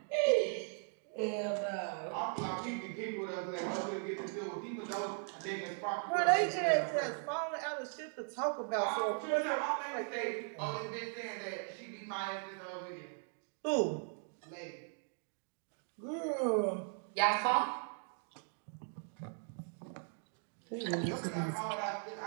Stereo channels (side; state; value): left; silent; 52 dB below the other